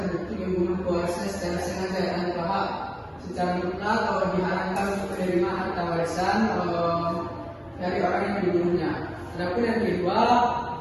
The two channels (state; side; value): identical; both; correlation 1.00